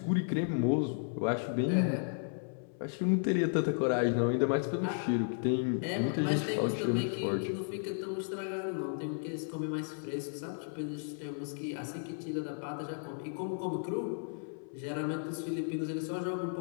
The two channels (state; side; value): silent; right; 55 dB below the other